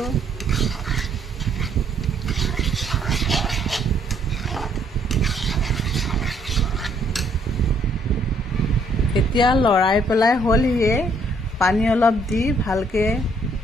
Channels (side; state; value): both; normal; correlation 0.67